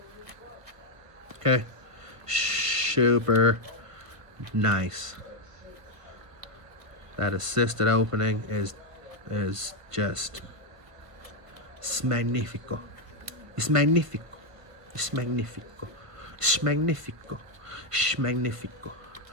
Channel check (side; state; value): left; late; 1.5 ms